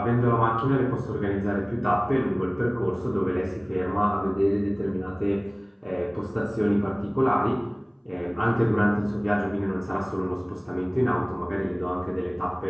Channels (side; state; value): both; identical; correlation 1.00